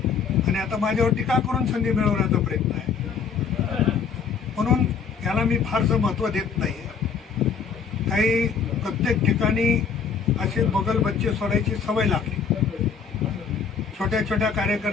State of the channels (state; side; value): quieter; right; 6.2 dB